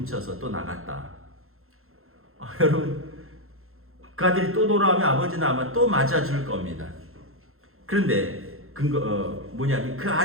또 나갔다. 여러분 그 아들이 또 돌아오면 아버지는 아마 또 맞아줄 겁니다. 그런데 뭐냐면 그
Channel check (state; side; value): late; left; 0.62 ms